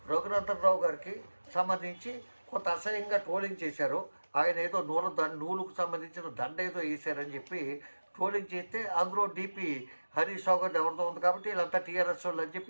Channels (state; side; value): inverted; both; correlation -1.00